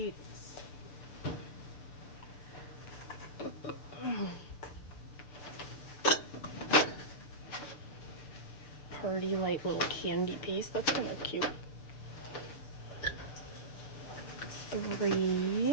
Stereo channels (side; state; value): right; late; 6.8 ms